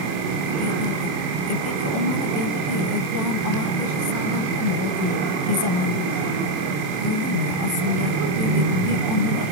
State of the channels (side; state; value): left; late; 27 ms